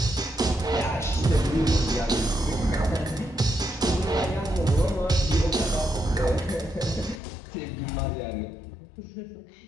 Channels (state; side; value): drops out; right; at 7.2 s